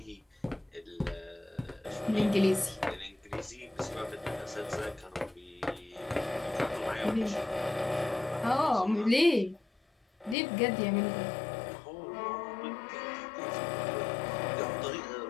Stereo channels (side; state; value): right; drops out; at 10.4 s